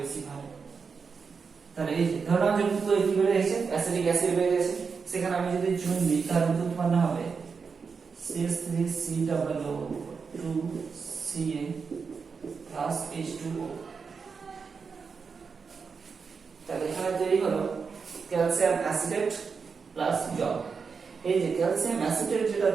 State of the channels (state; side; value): quieter; left; 5.4 dB